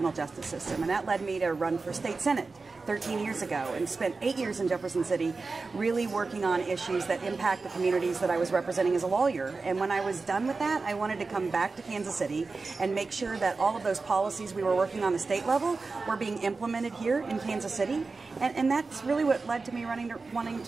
justice system. And that led me to run for state senate 13 years ago and spent 8 years in Jefferson City really working on issues that impact the communities that I was representing as a lawyer. And when I was done with that, I wanted to come back to Kansas City and make sure that all of those policies we were working on the state level were being implemented here in Kansas City. And that's really what led to me wanting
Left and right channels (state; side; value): quieter; left; 4.0 dB